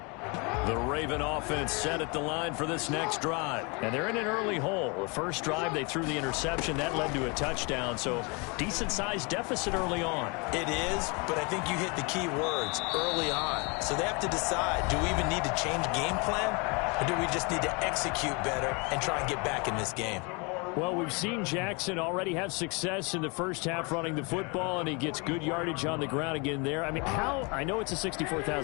The Raven offense set at the line for this next drive. And they're in an early hole. The first drive, they threw the interception. That led to a touchdown. So decent-sized deficit early on. It is, but I think you hit the key words, early on. So they have to decide, do we even need to change game plan? Or do we just need to execute better and try and get back in this game? Well, we've seen Jackson already have success in the first half running the football, and he gets good yardage on the ground again there. I mean, I know it's a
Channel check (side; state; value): right; quieter; 30.6 dB